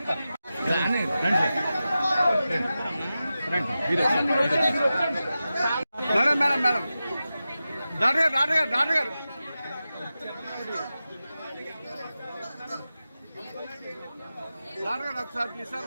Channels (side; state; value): both; inverted; correlation -0.93